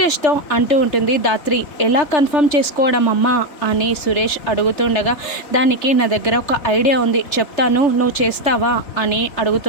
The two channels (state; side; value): late; right; 3.3 ms